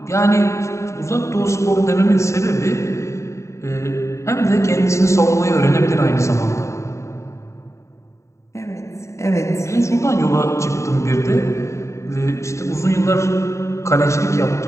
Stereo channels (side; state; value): right; late; 0.14 ms